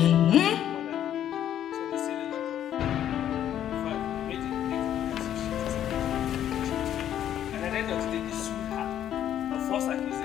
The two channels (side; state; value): right; quieter; 10.7 dB